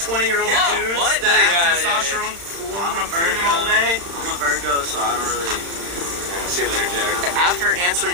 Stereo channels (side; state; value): left; late; 35 ms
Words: dudes what? that have testosterone flowing through them all day. I'm a Virgo, so I don't really... See you later, Jack. After